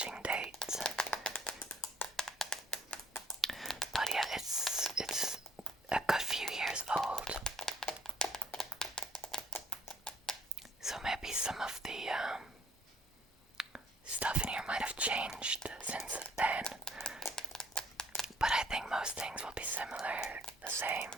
date. But yeah, it's a good few years old. So maybe some of the stuff in here might have changed since then. But I think most things will be similar, the same.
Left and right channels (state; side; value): normal; both; correlation 0.62